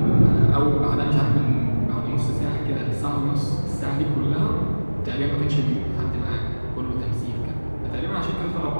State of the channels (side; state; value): both; inverted; correlation -1.00